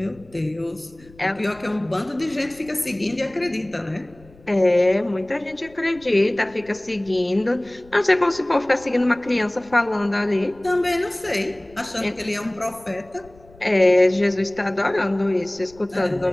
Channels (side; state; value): left; noise; rumble, 26 dB below the sound